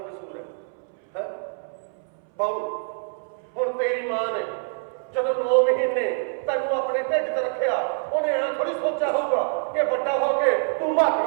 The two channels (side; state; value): left; silent; 62 dB below the other